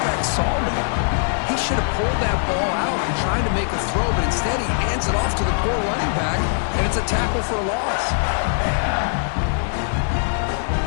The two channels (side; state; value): right; silent; 65 dB below the other